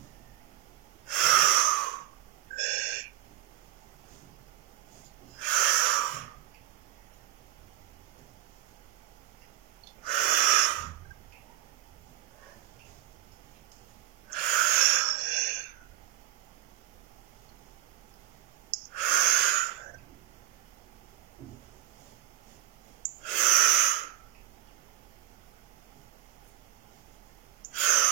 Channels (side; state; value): left; quieter; 15.5 dB